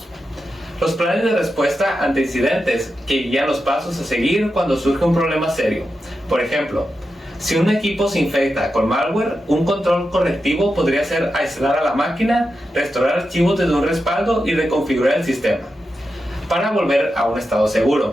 Los planes de respuesta ante incidentes, que guían los pasos a seguir cuando surge un problema serio. Por ejemplo, si un equipo se infecta con malware, un control correctivo podría ser aislar a la máquina, restaurar archivos desde un respaldo y reconfigurar el sistema para volver a un estado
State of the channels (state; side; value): normal; both; correlation 0.89